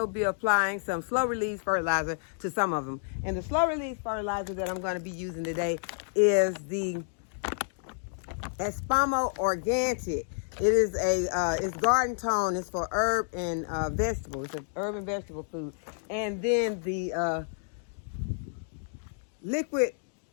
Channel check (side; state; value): right; silent; digital silence